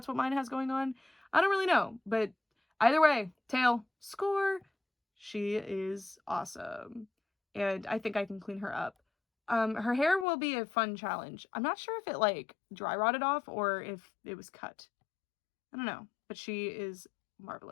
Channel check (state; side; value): drops out; right; at 10.2 s